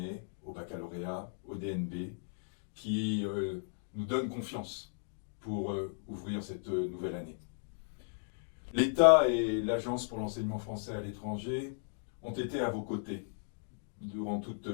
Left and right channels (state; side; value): silent; right; digital silence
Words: au baccalauréat, au DNB, qui nous donnent confiance pour ouvrir cette nouvelle année. L'État et l'Agence pour l'enseignement français à l'étranger ont été à vos côtés durant